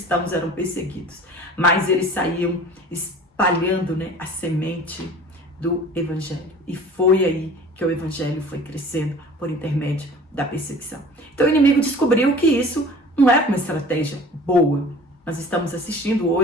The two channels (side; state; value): both; normal; correlation 0.44